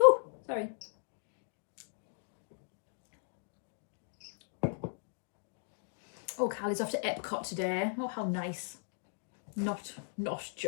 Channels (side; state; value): right; silent; digital silence